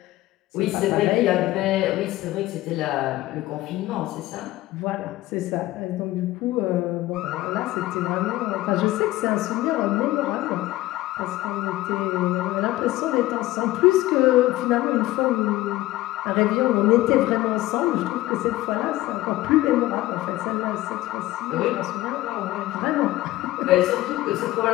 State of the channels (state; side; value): quieter; right; 17.0 dB